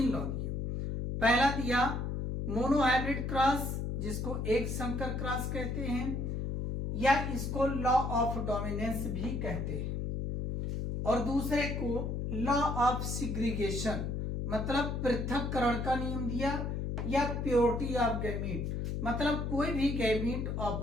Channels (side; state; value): left; noise; hum, 2 dB below the sound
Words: पहला दिया मोनोहाइब्रिड क्रॉस, जिसको एक संकर क्रॉस कहते हैं, या इसको लॉ ऑफ डोमिनेंस भी कहते हैं। और दूसरे को लॉ ऑफ सिग्रीगेशन, मतलब पृथक्करण का नियम दिया, या प्योरिटी ऑफ गैमीट, मतलब कोई भी गैमीट